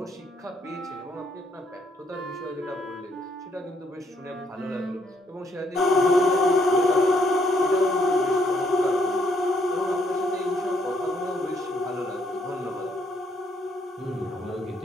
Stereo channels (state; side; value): normal; both; correlation 0.71